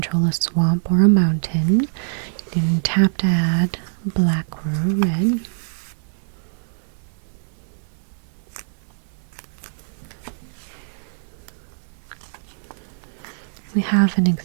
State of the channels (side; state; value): left; silent; digital silence